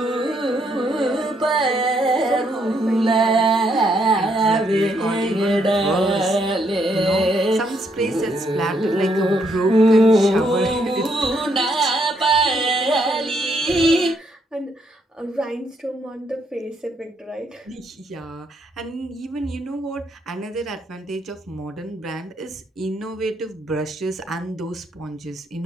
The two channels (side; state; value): both; normal; correlation 0.73